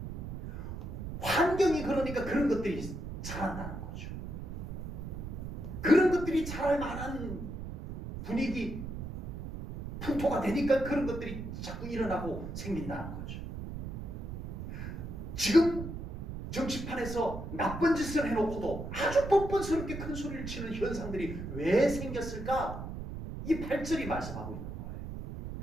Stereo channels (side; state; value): right; noise; rumble, 8 dB below the sound